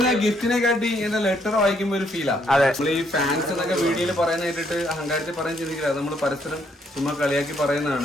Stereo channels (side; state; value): both; normal; correlation 0.71